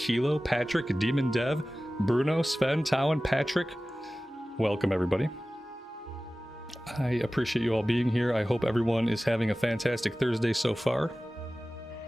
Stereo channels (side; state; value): both; normal; correlation 0.96